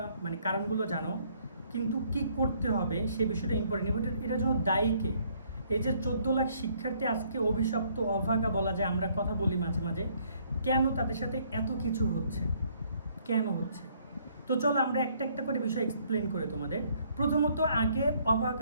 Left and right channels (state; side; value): inverted; both; correlation -0.65